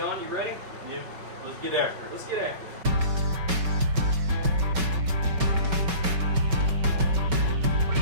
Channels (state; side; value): late; left; 5.3 ms